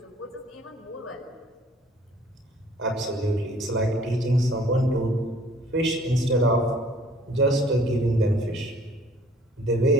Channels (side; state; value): both; normal; correlation 0.56